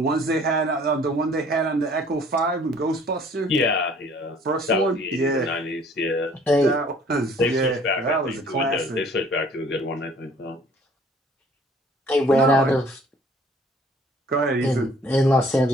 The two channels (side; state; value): both; normal; correlation 0.55